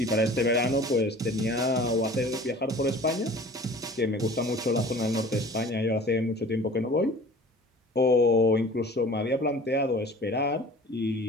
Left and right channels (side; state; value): both; normal; correlation 0.44